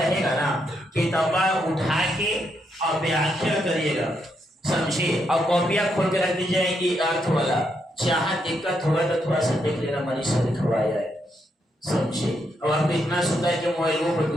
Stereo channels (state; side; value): normal; both; correlation 0.79